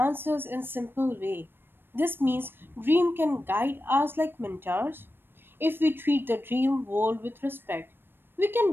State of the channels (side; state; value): left; late; 0.099 ms